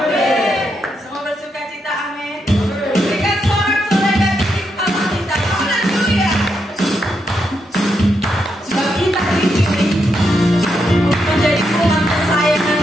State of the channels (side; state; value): both; normal; correlation 0.82